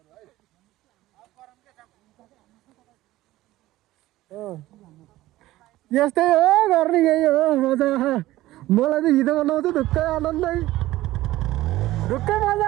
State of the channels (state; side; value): quieter; left; 16.5 dB